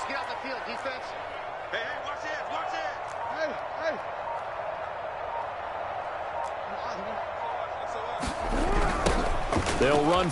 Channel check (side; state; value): both; identical; correlation 1.00